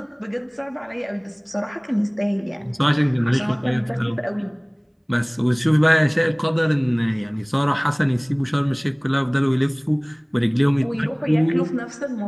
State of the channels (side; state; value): both; identical; correlation 1.00